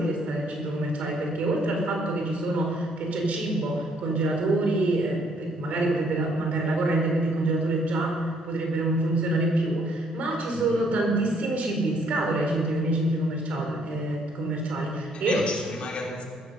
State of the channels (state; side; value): normal; both; correlation 0.66